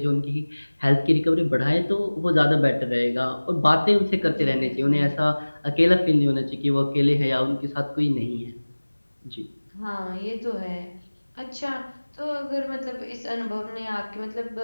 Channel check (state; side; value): inverted; both; correlation -1.00